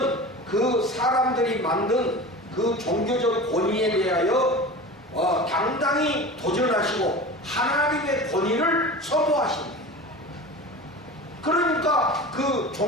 그 사람들이 만든 그 종교적 권위에 대하여 당당히 도전하시고 하나님의 권위를 선포하십니다. 그러니까 그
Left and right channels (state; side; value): normal; both; correlation 0.33